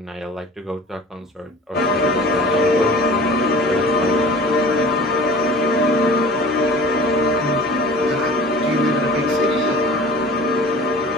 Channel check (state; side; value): normal; both; correlation 0.43